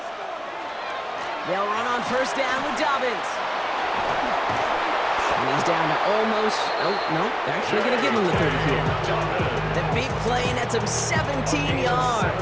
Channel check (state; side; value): identical; both; correlation 1.00